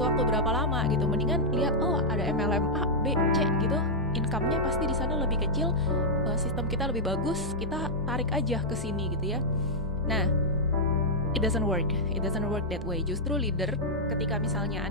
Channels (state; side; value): normal; both; correlation -0.06